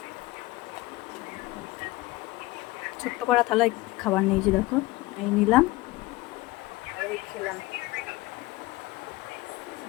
ছোট্ট করা থালায় খাবার নিয়েছি, দেখো এই নিলাম আর এই খেলাম।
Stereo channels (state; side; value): quieter; right; 20.0 dB